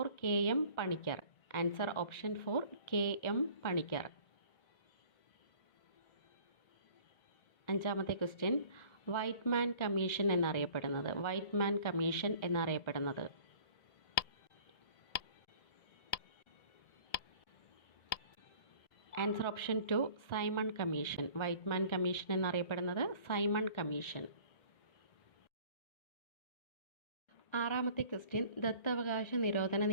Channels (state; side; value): late; right; 1.7 ms